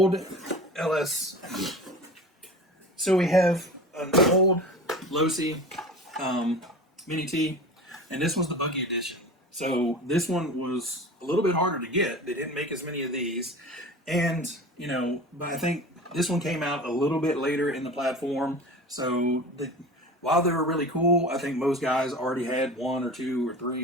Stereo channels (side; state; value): both; normal; correlation 0.35